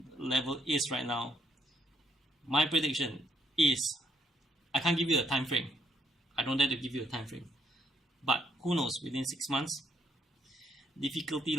level is right now, my prediction is, I can't give you a time frame. I don't dare to give you a time frame. But who knows, within 6 months, difficulty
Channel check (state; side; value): normal; both; correlation 0.72